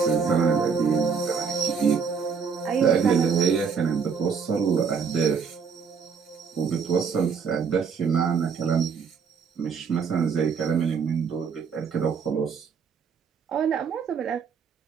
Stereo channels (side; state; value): left; quieter; 6.1 dB